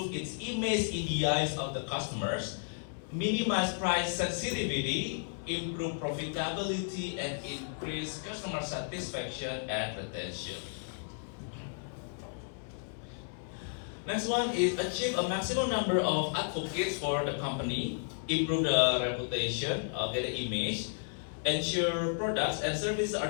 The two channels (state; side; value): silent; right; 56 dB below the other